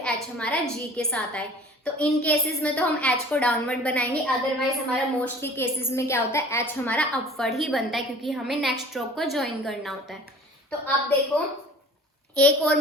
एच हमारा जी के साथ आए। तो इन केसेस में तो हम एच को डाउनवर्ड बनाएंगे, अदरवाइज हमारा मोस्टली केसेस में क्या होता है, एच हमारा अपवर्ड ही बनता है क्योंकि हमें नेक्स्ट स्ट्रोक को ज्वाइन करना होता है। तो अब देखो एक और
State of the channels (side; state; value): both; normal; correlation 0.47